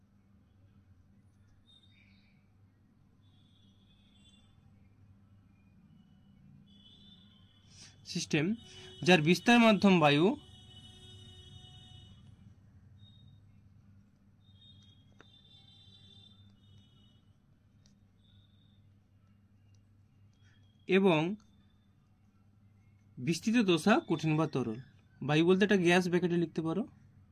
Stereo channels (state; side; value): identical; both; correlation 1.00